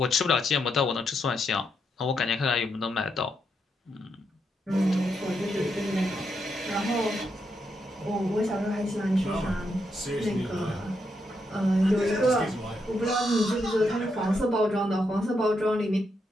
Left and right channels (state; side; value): normal; both; correlation 0.81